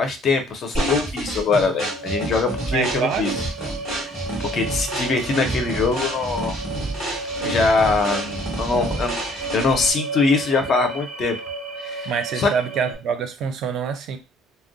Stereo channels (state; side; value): normal; both; correlation 0.59